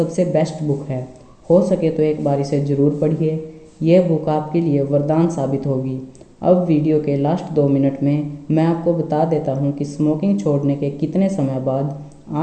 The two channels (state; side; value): identical; both; correlation 1.00